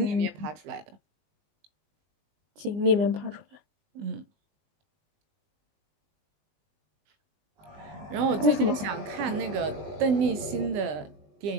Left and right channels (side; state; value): left; late; 20 ms